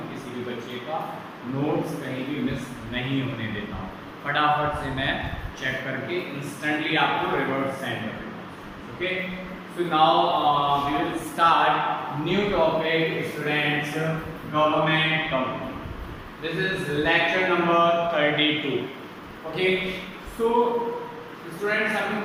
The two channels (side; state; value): both; identical; correlation 1.00